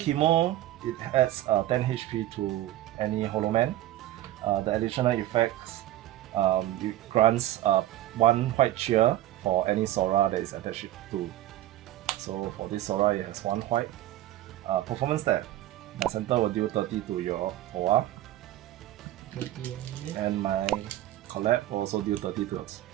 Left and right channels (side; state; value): left; quieter; 14.2 dB